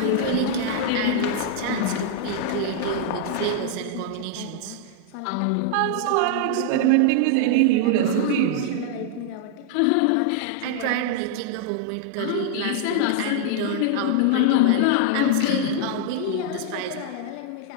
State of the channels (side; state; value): both; different; correlation -0.01